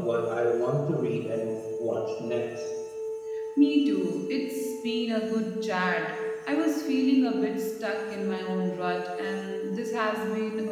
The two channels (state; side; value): identical; both; correlation 1.00